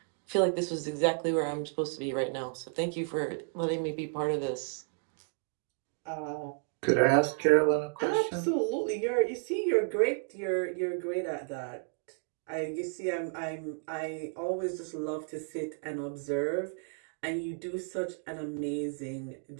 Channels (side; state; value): left; silent; 56 dB below the other